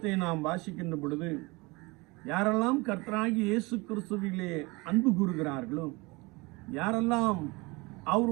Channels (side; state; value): left; quieter; 25.1 dB